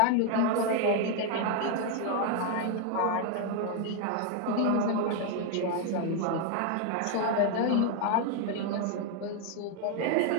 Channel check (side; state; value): both; different; correlation 0.01